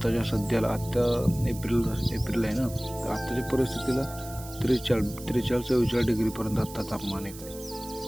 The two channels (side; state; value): right; noise; hiss, 15 dB below the sound